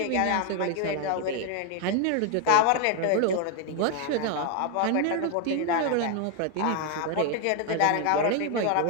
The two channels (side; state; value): both; different; correlation 0.01